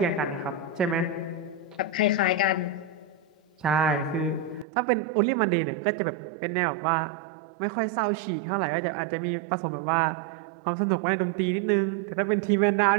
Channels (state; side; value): drops out; left; at 4.7 s